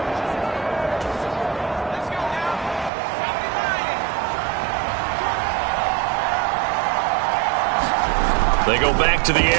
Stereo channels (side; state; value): left; drops out; at 2.9 s